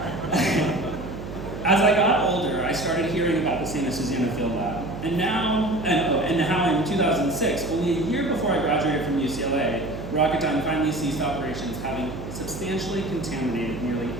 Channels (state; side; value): noise; right; hum, 9 dB below the sound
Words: As I got older, I started hearing about the St. Susana Field Lab. And how in 2006, only a year before I graduated from UCLA, Rocketdyne finally ceased operations, having substantially contaminated nearly